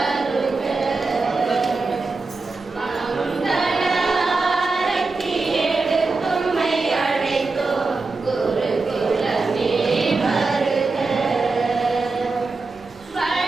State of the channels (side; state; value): left; quieter; 3.8 dB